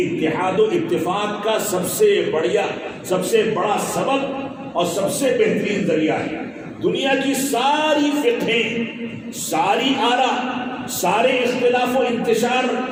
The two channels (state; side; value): identical; both; correlation 1.00